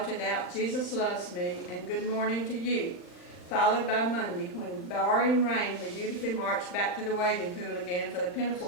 out, "Jesus loves me," and "Good morning to you," followed by Monday, when, barring rain, we dutifully marched back to the wading pool again for the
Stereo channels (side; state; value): right; late; 39 ms